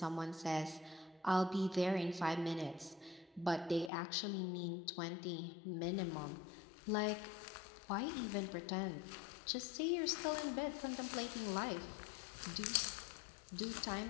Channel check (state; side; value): drops out; right; at 3.9 s